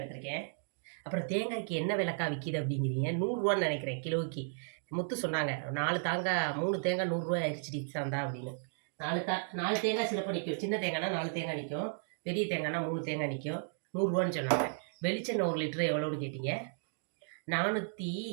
அப்புறம் தேங்காய்க்கு என்ன விலைக்கா விற்கிது அப்படிங்கிறீங்க. 100 ரூபான்னு நினைக்கிறேன் கிலோவுக்கு. முத்து சொன்னாங்க 4 தேங்காய் 3 தேங்காய் 100 ரூபாய் ஆயிடுச்சு சாந்தா அப்படின்னு. 4 தேங்காய் சிலப்போ நிற்கும். சின்ன தேங்காய்னா 4 தேங்காய் நிற்கும், பெரிய தேங்காய்னா 3 தேங்காய் நிற்கும். 100 ரூபான்னு சொன்னாங்க. வெளிச்செண்ணெய் 1 லிட்டரு எவ்வளோன்னு கேட்டீங்க. 450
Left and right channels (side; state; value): left; silent; digital silence